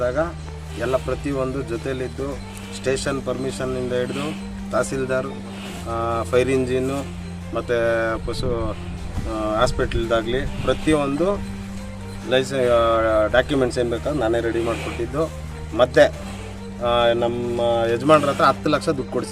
ಎಲ್ಲ ಪ್ರತಿಯೊಂದು ಜೊತೇಲಿದ್ದು, ಸ್ಟೇಷನ್ ಪರ್ಮಿಷನ್ನಿಂದ ಹಿಡಿದು ತಹಸೀಲ್ದಾರ್, ಫೈರ್ ಇಂಜಿನ್ನು ಮತ್ತು ಪಶು ಹಾಸ್ಪಿಟ್ಲ್ದಾಗಲಿ ಪ್ರತಿಯೊಂದು ಡಾಕ್ಯುಮೆಂಟ್ಸ್ ಏನು ಬೇಕಾದ್ರೆ ನಾನೇ ರೆಡಿ ಮಾಡಿಕೊಟ್ಟಿದ್ದು. ಮತ್ತು ನಮ್ಮ ಯಜಮಾನ್ರ ಹತ್ರ 10 ಲಕ್ಷ ದುಡ್ಡು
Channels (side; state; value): both; identical; correlation 1.00